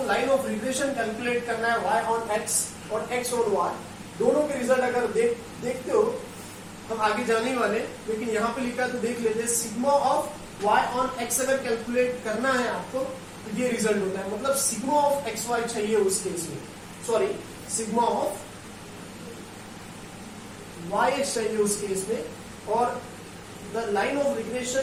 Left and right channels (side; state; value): both; identical; correlation 1.00